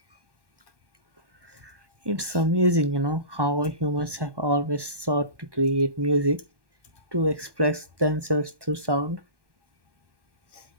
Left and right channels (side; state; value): left; late; 1.1 ms